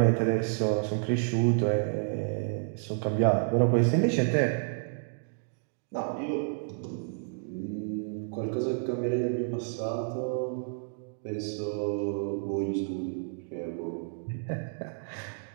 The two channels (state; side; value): silent; left; digital silence